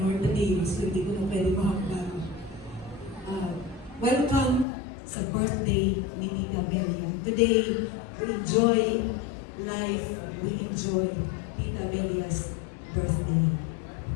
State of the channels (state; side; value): drops out; right; at 4.7 s